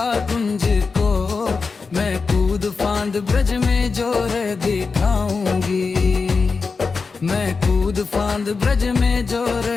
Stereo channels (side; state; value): right; quieter; 4.6 dB